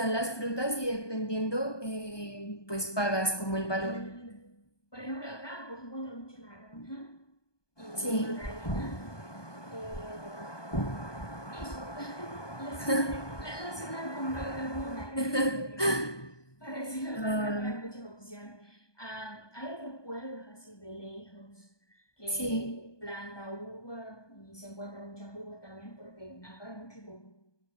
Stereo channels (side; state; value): right; late; 1.2 ms